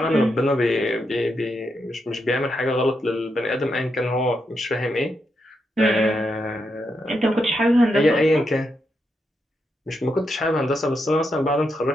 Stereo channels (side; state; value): both; normal; correlation 0.83